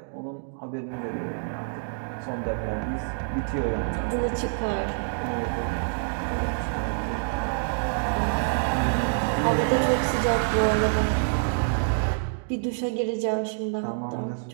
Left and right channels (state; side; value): silent; left; digital silence